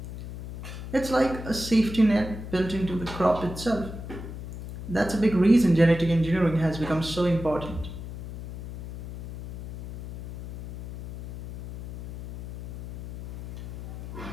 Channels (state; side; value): noise; left; hum, 10 dB below the sound